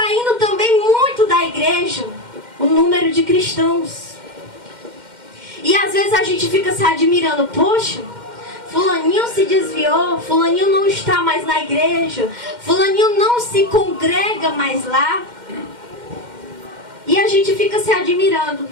também muito da igreja o número de cristãos. E às vezes a gente fica se admirando, poxa, fulaninho se desviou, fulaninho não está mais na igreja, fulaninho não se congrega mais lá. E a gente fica se admirando.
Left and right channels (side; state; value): left; late; 2.1 ms